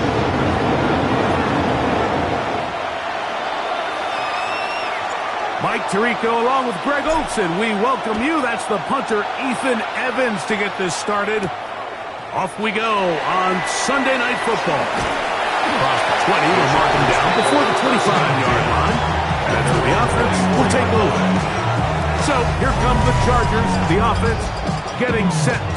Mike Tirico along with Greg Olson. We welcome you. That's the punter, Ethan Evans, to get this started. Off we go on Sunday Night Football. Across the 20, we'll mark him down before the 25-yard line. That's where the offense will take over. So here come the Chargers, the offense getting set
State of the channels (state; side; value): identical; both; correlation 1.00